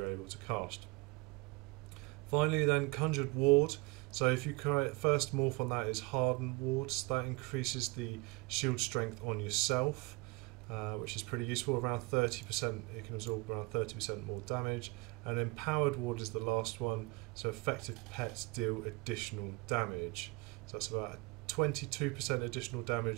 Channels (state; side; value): quieter; left; 25.8 dB